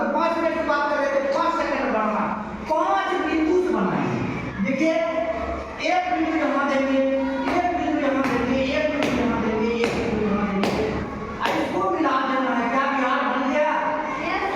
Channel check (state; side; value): identical; both; correlation 1.00